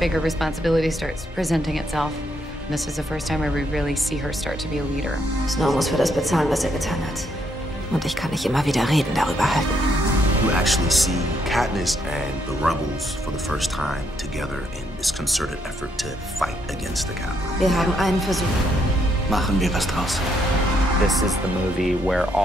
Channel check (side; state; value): both; normal; correlation 0.74